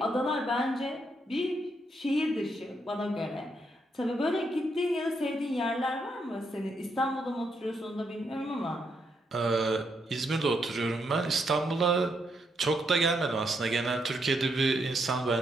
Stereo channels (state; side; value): normal; both; correlation 0.78